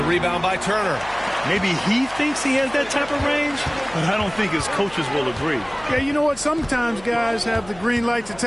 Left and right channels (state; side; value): noise; left; hum, 21 dB below the sound